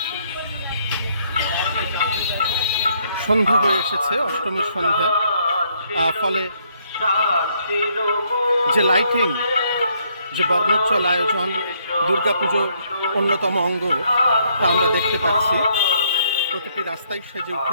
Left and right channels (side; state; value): both; inverted; correlation -0.70